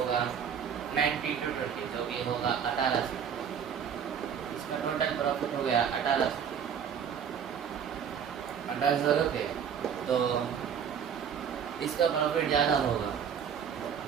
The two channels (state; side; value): quieter; left; 7.8 dB